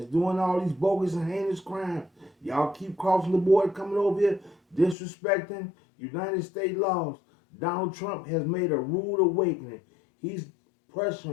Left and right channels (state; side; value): drops out; right; at 5.0 s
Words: doing all these bogus and heinous crimes. Y'all keep crossing the border, coming over here, disrespecting United States laws. Donald Trump has made a rude awakening. He's